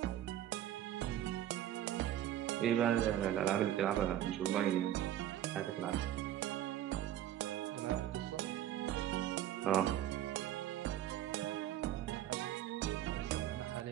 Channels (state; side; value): quieter; left; 12.1 dB